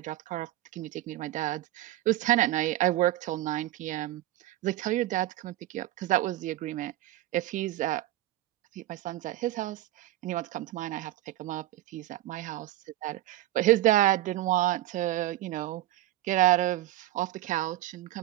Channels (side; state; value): left; quieter; 14.8 dB